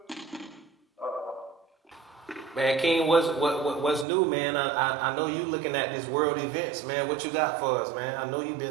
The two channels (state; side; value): drops out; left; at 4.0 s